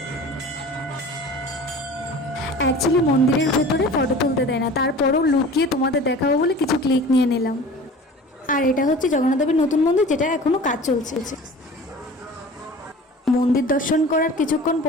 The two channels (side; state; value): both; normal; correlation 0.41